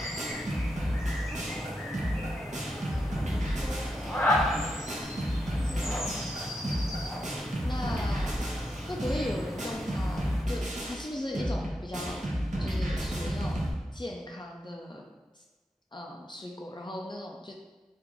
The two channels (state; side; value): normal; both; correlation 0.84